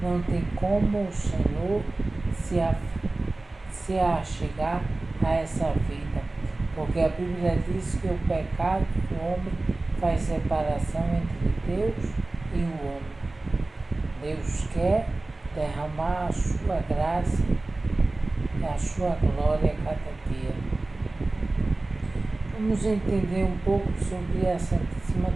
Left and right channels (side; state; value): left; quieter; 3.0 dB